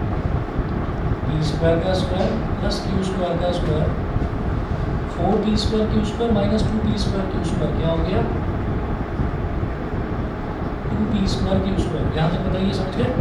स्क्वायर का स्क्वायर प्लस क्यू स्क्वायर का square 4p square Q square minus 2p square Q square क्या हो गया 2p स्क्वायर क्यू स्क्वायर. यहाँ तक बताइए समझ गए.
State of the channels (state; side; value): identical; both; correlation 1.00